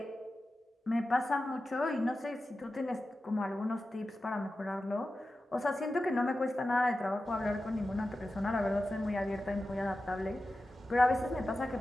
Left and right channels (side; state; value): both; normal; correlation 0.93